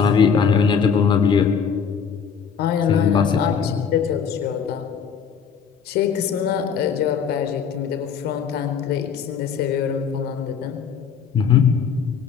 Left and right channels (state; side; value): quieter; right; 6.8 dB